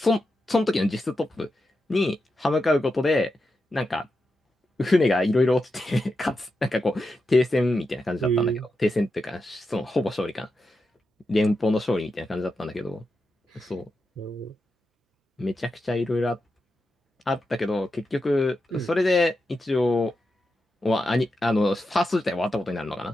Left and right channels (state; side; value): normal; both; correlation 0.88